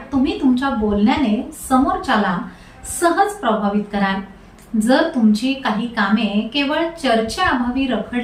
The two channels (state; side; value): identical; both; correlation 1.00